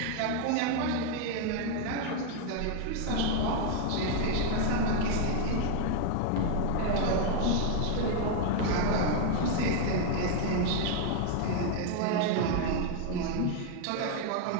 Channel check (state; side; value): different; both; correlation 0.00